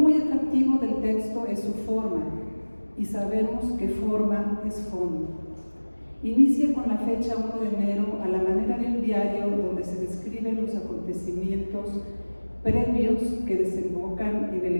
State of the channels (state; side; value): inverted; both; correlation -1.00